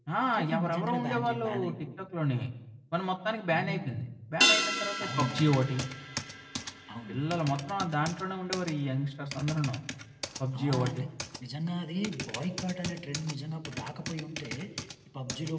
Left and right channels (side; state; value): both; identical; correlation 1.00